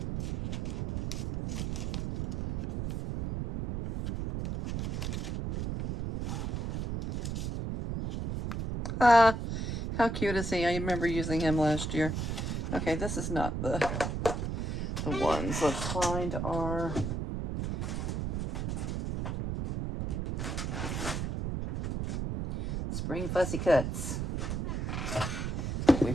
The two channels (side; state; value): right; noise; rumble, 2 dB below the sound